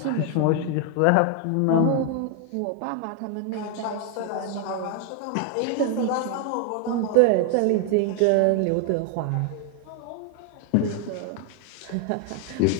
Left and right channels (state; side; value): different; both; correlation 0.00